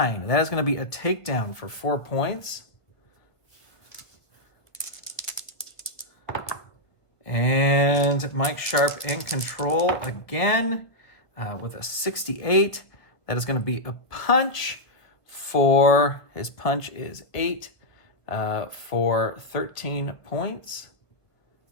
That is going to be a takedown for 4 points. And Mike Sharp in control again with a 68. That is going to be a punch. His punch is 8 for 13 points.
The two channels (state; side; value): late; right; 1.5 ms